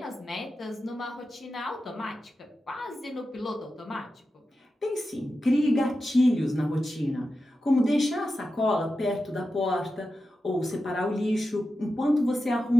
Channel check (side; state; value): both; normal; correlation 0.91